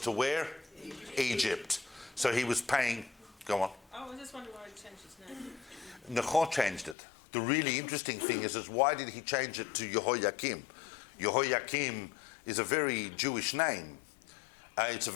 to where? Egypt. So he was paying, go on. Oh, I just wondering why he changed his name. Necho changed it. The really interesting thing is why did he change it to Jehoiakim? Jehoiakim is a very Jewish name. It's a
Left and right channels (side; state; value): right; drops out; at 7.0 s